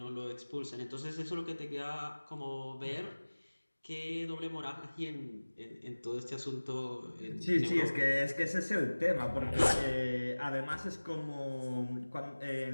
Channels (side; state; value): both; inverted; correlation -1.00